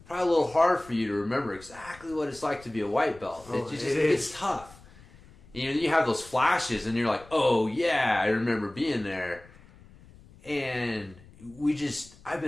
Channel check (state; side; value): noise; left; rumble, 23 dB below the sound